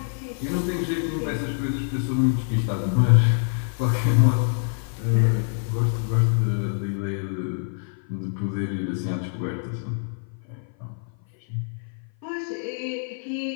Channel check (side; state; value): right; silent; 56 dB below the other